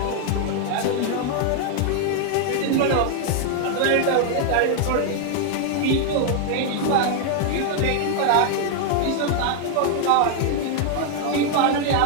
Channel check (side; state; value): both; different; correlation 0.00